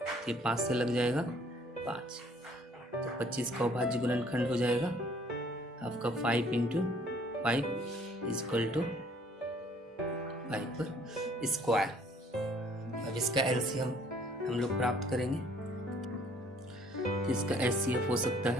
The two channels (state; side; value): normal; both; correlation 0.59